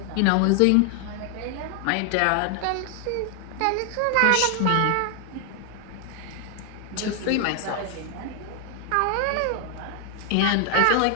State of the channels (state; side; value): different; both; correlation 0.00